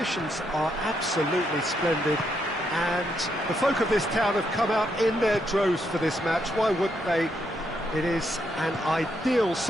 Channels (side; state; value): both; normal; correlation 0.78